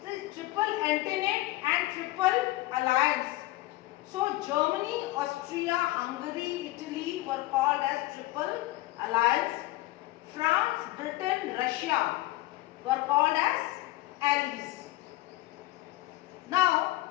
the triple entente and triple alliance. So Germany, Austria, Hungary, Italy were called as triple alliance. France, Britain, Russia were called as allies. Now,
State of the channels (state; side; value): quieter; right; 18.1 dB